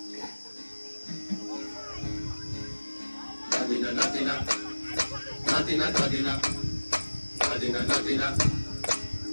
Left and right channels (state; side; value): inverted; both; correlation -1.00